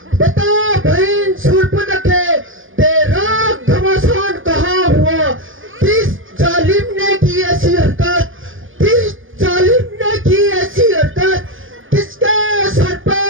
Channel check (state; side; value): late; left; 0.58 ms